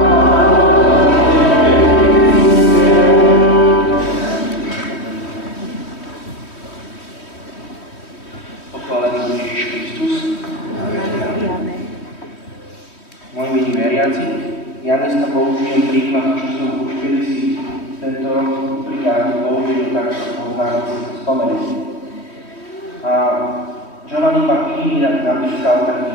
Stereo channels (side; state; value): right; late; 3.1 ms